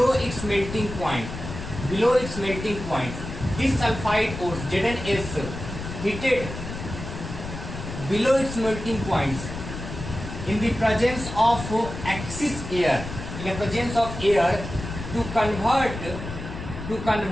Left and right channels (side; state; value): left; noise; rumble, 9 dB below the sound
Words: its melting point. Below its melting point, this sulfide ores ZnS heated below its melting points in the presence of excess air. In the presence of air to convert